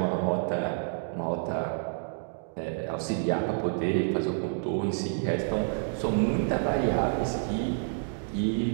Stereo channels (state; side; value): silent; left; digital silence